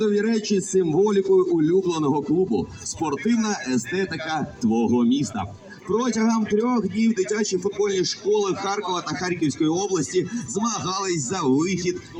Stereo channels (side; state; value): both; identical; correlation 1.00